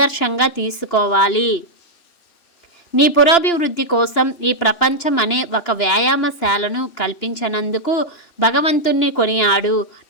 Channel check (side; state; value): right; late; 2.9 ms